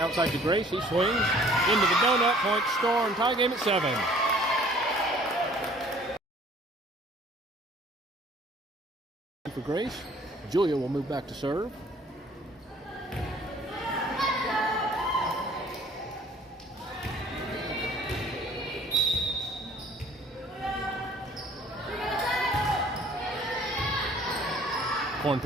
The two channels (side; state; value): both; normal; correlation 0.54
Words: to Grace. He swings. Into the donut. Point Storm. Tie game at 7. For Grace. Julia will move back to serve. Corn